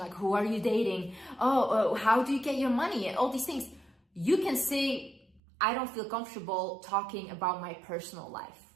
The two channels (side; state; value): left; drops out; at 5.4 s